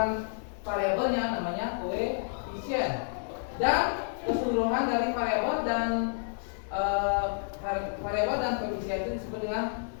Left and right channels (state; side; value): silent; right; digital silence